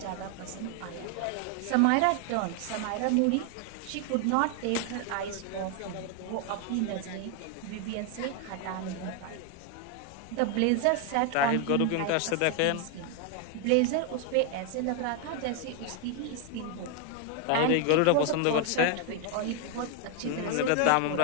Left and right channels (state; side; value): different; both; correlation 0.01